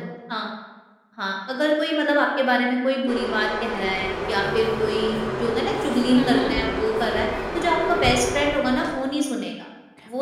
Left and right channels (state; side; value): identical; both; correlation 1.00